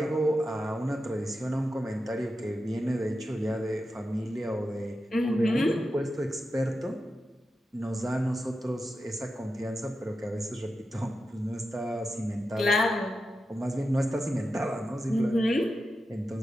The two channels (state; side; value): normal; both; correlation 0.90